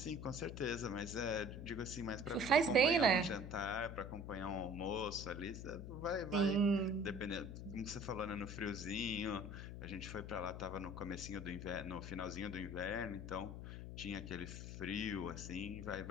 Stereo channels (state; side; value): noise; left; hum, 8 dB below the sound